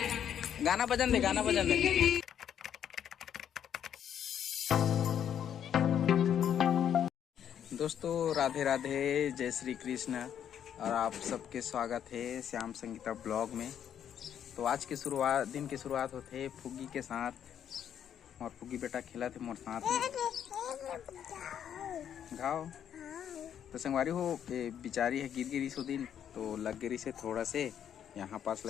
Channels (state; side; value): quieter; right; 9.3 dB